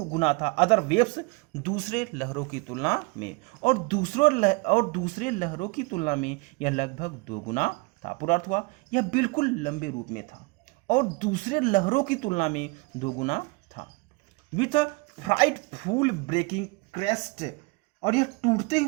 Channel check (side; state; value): left; quieter; 27.2 dB